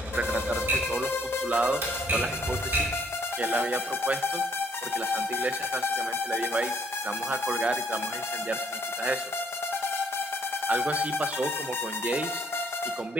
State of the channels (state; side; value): normal; both; correlation 0.65